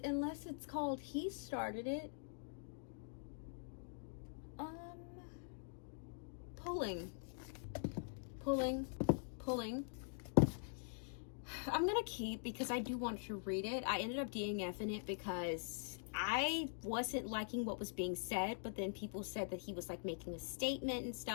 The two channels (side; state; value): right; silent; digital silence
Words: unless it's called He Started It. Pulling, pulling, pulling. I'm gonna keep because I do want to read it. I ended up DNFing it because I wasn't liking what was being said, but then people said that he was like making a statement and